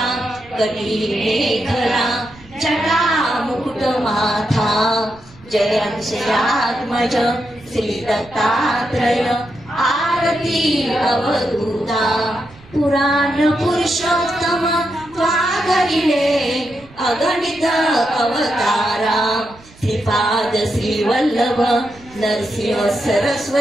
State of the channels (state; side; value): noise; right; rumble, 24 dB below the sound